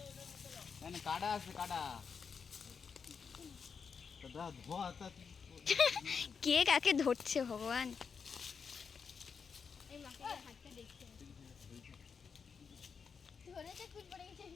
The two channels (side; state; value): right; quieter; 6.0 dB